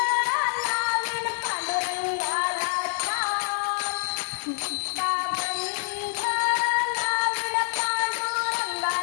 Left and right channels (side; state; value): right; silent; digital silence